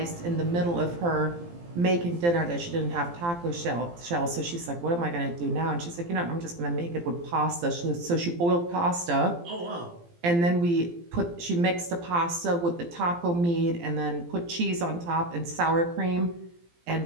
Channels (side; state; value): left; late; 17 ms